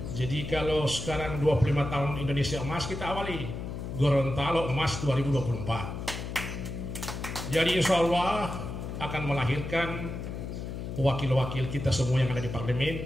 Jadi kalau sekarang 25 tahun Indonesia emas, kita awali Gorontalo emas 2024. Jadi insya Allah akan melahirkan wakil-wakil kita semua yang ada di parlemen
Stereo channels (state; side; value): noise; left; hum, 6 dB below the sound